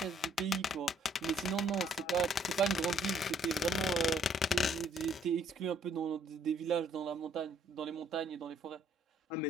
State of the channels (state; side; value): normal; both; correlation 0.65